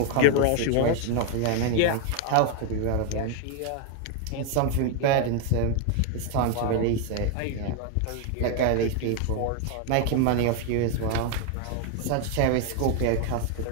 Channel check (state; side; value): different; both; correlation 0.01